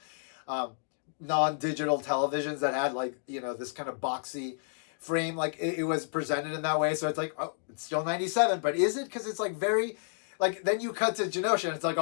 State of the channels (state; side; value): silent; right; digital silence